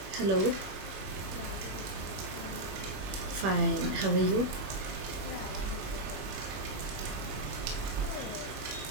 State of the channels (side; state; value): left; late; 21 ms